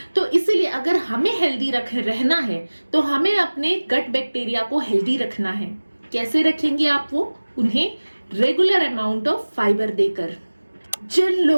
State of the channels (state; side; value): inverted; both; correlation -1.00